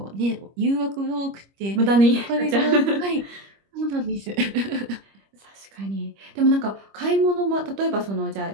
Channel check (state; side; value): late; left; 25 ms